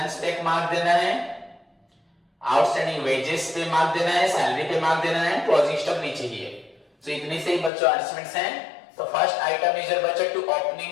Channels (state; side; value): drops out; right; at 7.7 s